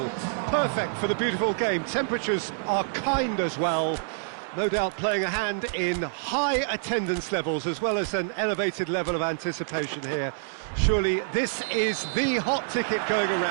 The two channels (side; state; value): left; silent; digital silence